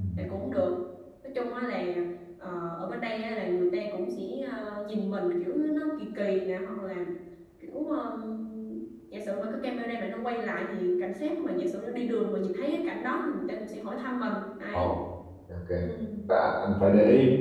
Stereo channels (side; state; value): both; identical; correlation 1.00